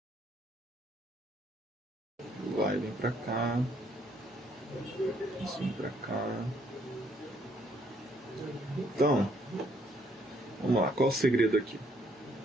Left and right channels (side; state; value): both; normal; correlation 0.68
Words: Vai, vem para cá. Isso vem para cá. Então, vamos lá. Qual o segredo aqui?